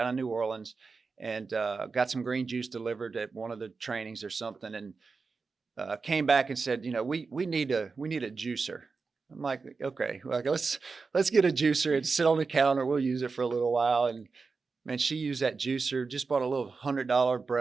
in New Orleans and got some green juice delivered at one of the trainings or something, and came back and said, we need a juicer. I'm like, okay, let's get a juicer and sit on the counter. We'll use it for a little while. And man, she used that juicer, just bought a little $100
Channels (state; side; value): quieter; left; 4.6 dB